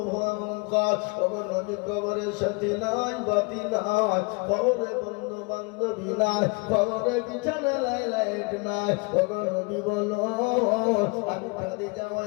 নবী কবরের সাথে নাই, বাতি নাই, কবরে বন্ধু বান্ধবী নাই, কবরে বিছানা লাইট নাই। নবী বলো, আমি খাদিজা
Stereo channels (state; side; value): quieter; right; 30.6 dB